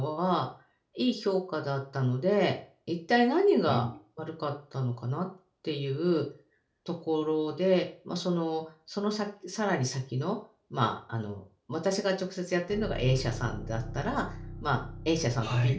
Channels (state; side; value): identical; both; correlation 1.00